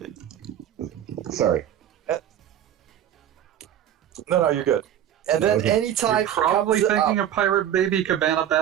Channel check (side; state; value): left; quieter; 10.6 dB